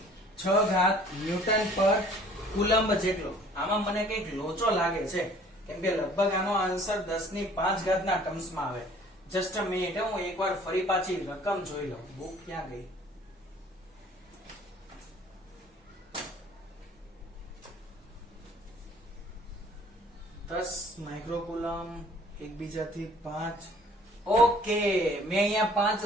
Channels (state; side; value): normal; both; correlation 0.54